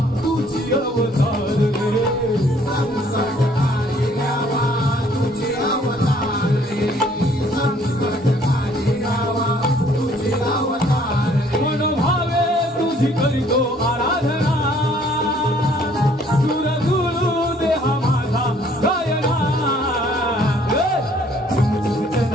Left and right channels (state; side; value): normal; both; correlation 0.60